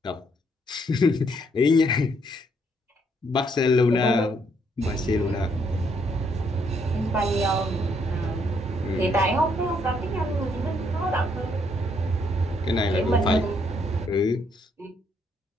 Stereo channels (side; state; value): both; normal; correlation 0.71